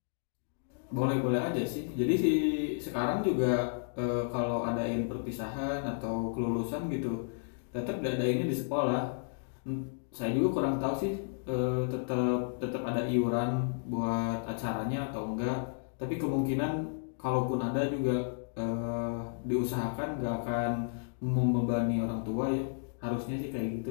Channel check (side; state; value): right; silent; digital silence